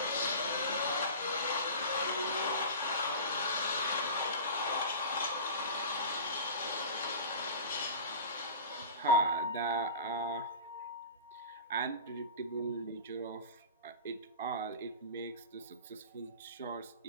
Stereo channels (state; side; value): inverted; both; correlation -0.33